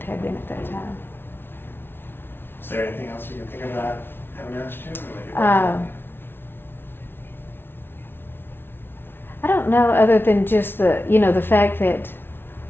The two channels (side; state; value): right; late; 0.11 ms